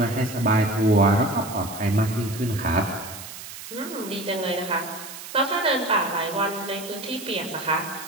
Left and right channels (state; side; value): noise; right; hiss, 12 dB below the sound